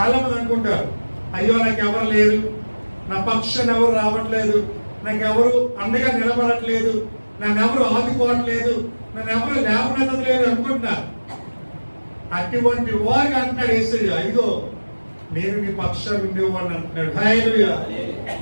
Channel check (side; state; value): both; inverted; correlation -1.00